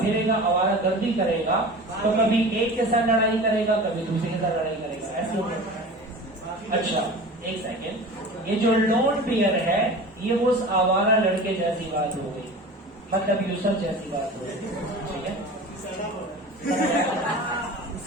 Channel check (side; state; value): both; normal; correlation 0.36